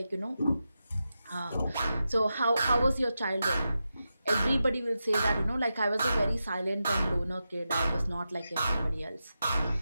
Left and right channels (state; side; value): inverted; both; correlation -0.90